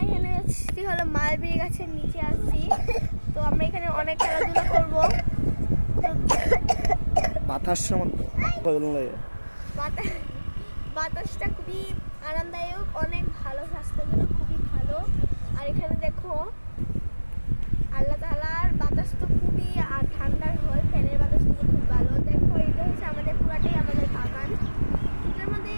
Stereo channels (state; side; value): inverted; both; correlation -1.00